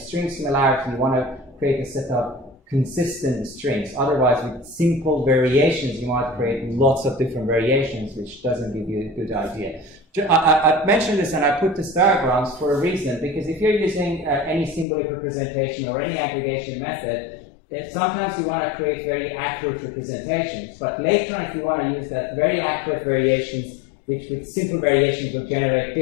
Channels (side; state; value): right; drops out; at 14.9 s